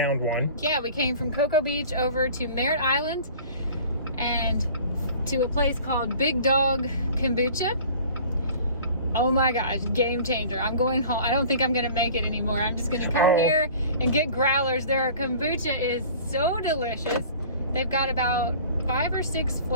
one. Yeah, we came from Cocoa Beach over to Merritt Island and to a place called Big Dog Kombucha. Oh my gosh, game changer. I'm going home. I don't think I'm gonna make it anymore. I'm just gonna come here and get growlers. Their kombucha is so delicious. They've got about 5 or 6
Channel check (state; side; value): inverted; both; correlation -0.45